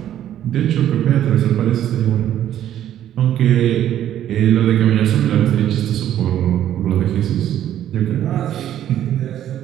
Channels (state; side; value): quieter; left; 11.4 dB